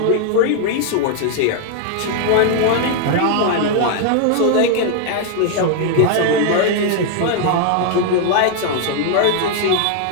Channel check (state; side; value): different; both; correlation 0.00